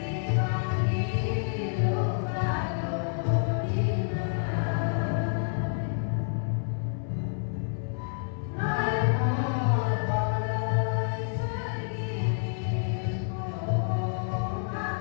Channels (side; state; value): right; silent; 59 dB below the other